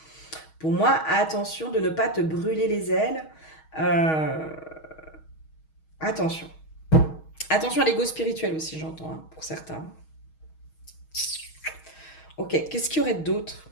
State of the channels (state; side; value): late; right; 6.3 ms